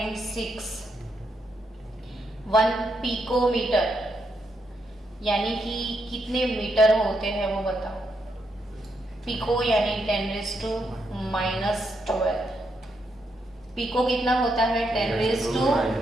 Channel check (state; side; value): normal; both; correlation 0.80